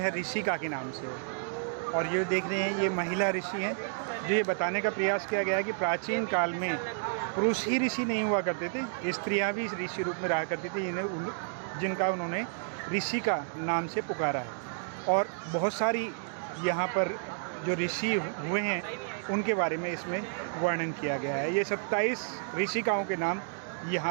ऋषिका के नाम से है। और ये देख रहे हैं ये महिला ऋषि हैं, जो ये बताने का प्रयास किया गया है कि प्राचीन काल में पुरुष ही ऋषि नहीं हुआ करते थे, स्त्रियां भी ऋषि रूप में रहा करती थी, जिनका उन्होंने ऋषिका नाम से पुकारा है। और बहुत सारी यहाँ पर जो ऋषि हुए हैं उनके बारे में इसमें वर्णन किया गया है। ये 27 ऋषिकाओं के नाम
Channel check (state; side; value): silent; left; digital silence